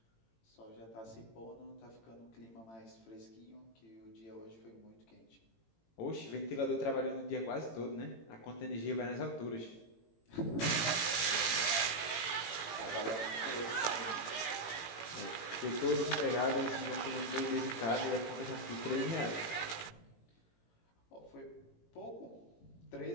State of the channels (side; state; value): right; late; 18 ms